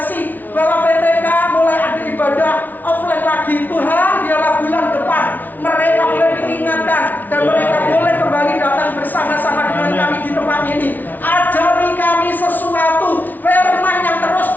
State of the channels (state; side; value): late; right; 0.082 ms